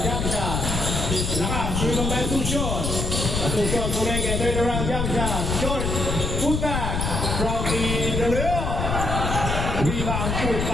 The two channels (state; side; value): noise; left; rumble, 1 dB below the sound